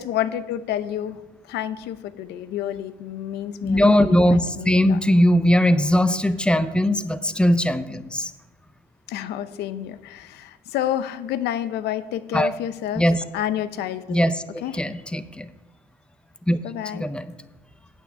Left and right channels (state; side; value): normal; both; correlation 0.80